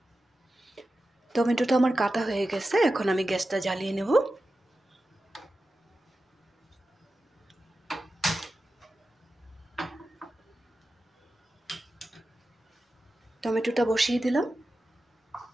টমেটোটা আমার কাটা হয়ে গেছে, এখন আমি গ্যাসটা জ্বালিয়ে নেব। টমেটোটা বসিয়ে দিলাম।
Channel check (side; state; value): both; normal; correlation 0.93